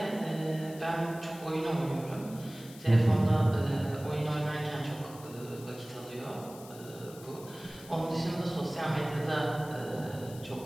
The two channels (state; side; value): noise; left; hiss, 19 dB below the sound